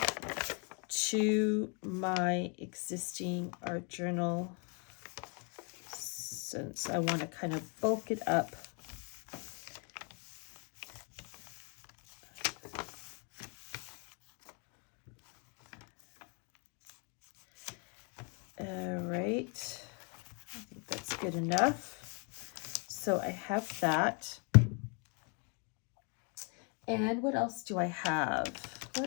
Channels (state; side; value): quieter; right; 37.3 dB